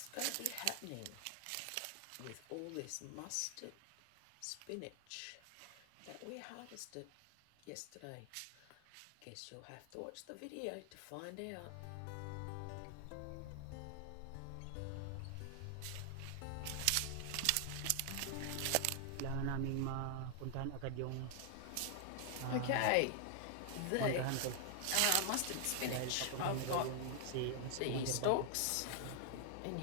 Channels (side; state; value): both; different; correlation 0.00